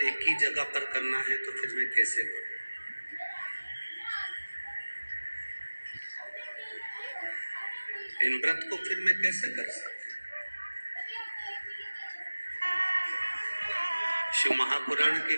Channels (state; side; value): inverted; both; correlation -1.00